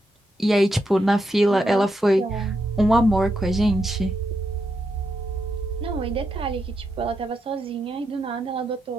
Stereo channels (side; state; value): both; normal; correlation 0.83